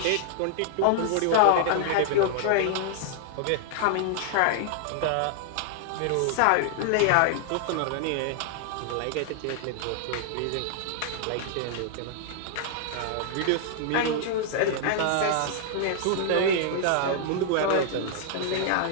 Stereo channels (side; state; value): both; different; correlation -0.01